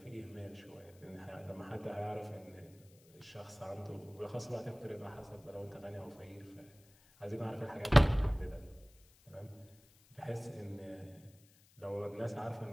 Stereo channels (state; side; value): noise; left; hiss, 27 dB below the sound